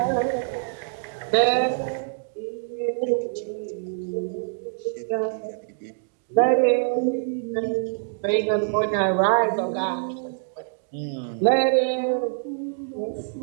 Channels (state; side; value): silent; left; digital silence